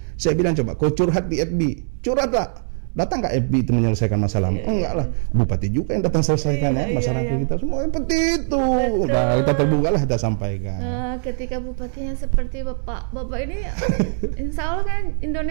Saya bilang coba kau curhat di FB, curhatlah Datang nggak FB itu menyelesaikan masalah? Enggak lah, bupati juga yang datang selesaikan masyarakat kita semua seperti itu. Nah, kita terbuka lah, kita sampaikan. Ketika bupatinya seperti bapak ini, insya Allah kan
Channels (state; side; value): silent; left; 65 dB below the other